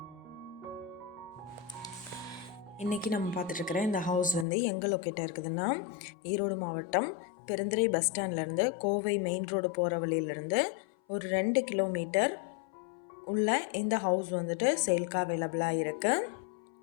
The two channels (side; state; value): right; drops out; at 4.5 s